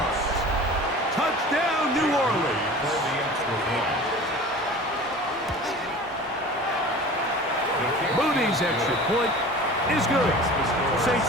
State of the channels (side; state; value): both; normal; correlation 0.39